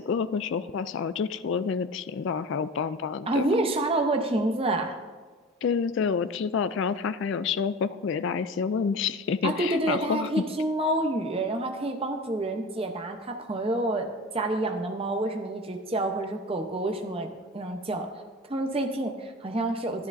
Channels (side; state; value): both; normal; correlation 0.34